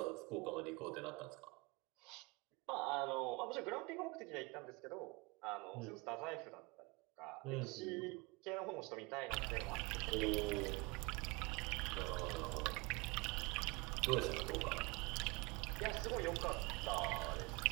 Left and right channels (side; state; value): left; quieter; 26.3 dB